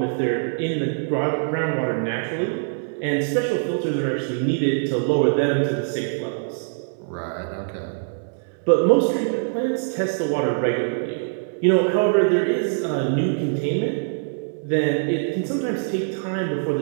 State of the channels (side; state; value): left; silent; digital silence